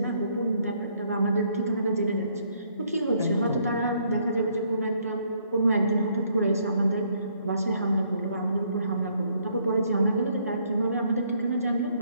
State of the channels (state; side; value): inverted; both; correlation -0.68